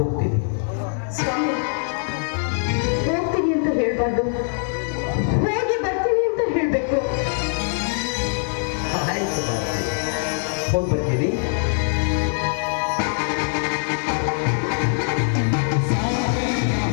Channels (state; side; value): silent; right; 64 dB below the other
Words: ಸ್ವಾಮಿ, ಹೋಗ್ತೀನಿ ಅಂತ ಹೇಳ್ಬಾರ್ದು, ಹೋಗಿ ಬರ್ತೀನಿ ಅಂತ ಹೇಳ್ಬೇಕು. ಆಯ್ತು ಬಾರ್ತಿ, ಹೋಗಿ ಬರ್ತೀನಿ.